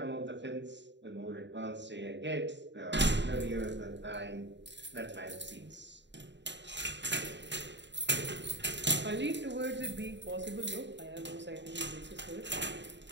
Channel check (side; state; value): left; late; 0.52 ms